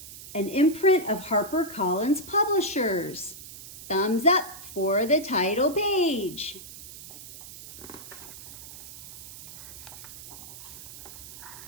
An imprint of HarperCollins Publishers. Thumbs up for the title page.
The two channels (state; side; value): noise; right; hiss, 14 dB below the sound